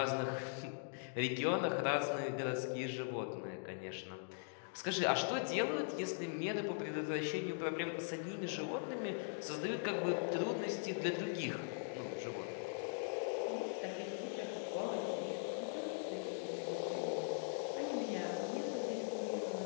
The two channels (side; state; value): right; silent; digital silence